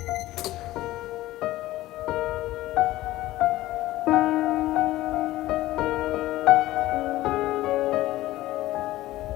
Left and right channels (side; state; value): right; quieter; 16.4 dB